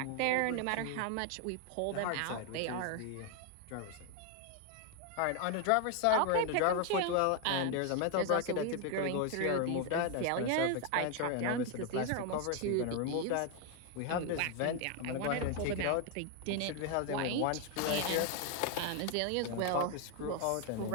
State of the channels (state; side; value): different; both; correlation 0.01